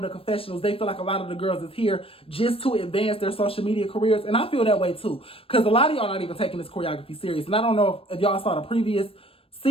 the confessionals, they feel like a lot of the girls is here just to advance their social media careers. And I feel that way too. Because a lot of y'all not even taking this choreography serious. And I don't know if y'all saw the previous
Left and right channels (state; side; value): late; right; 0.27 ms